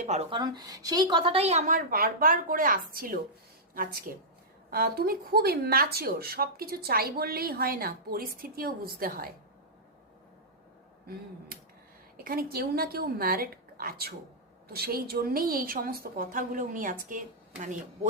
পারো, কারণ সেই কথাটাই আমার বারবার করে আসছিল আজকে। তুমি খুব ইম্যাচিওর, সব কিছু চাই বললেই হয় না, পরিস্থিতিও বুঝতে হয়। এখানে কেউ না কেউ ম্যারিড আছো, তো সেই জন্যেই এই সমস্ত কথাগুলো উনি আজকে মানে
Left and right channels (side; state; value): both; normal; correlation -0.12